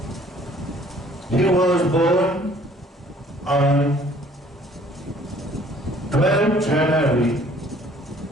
He was born on 12 January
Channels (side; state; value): both; normal; correlation 0.57